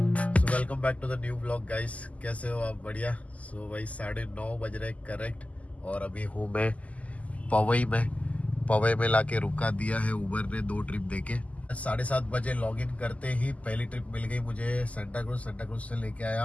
welcome back to the new blog guys. कैसे हो आप? बढ़िया। सो भाई 9:30 बज रहे करेक्ट, और अभी हूँ मैं पवई में लाके रुका दिया है उबर ने 2 ट्रिप देके। 7:30 बजे लॉग इन करते ही पहली ट्रिप मिल गई मुझे सेंटा क्रूज से लेके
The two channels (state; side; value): late; right; 0.071 ms